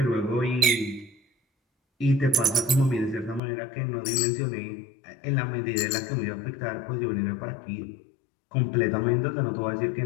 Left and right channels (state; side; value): drops out; right; at 3.4 s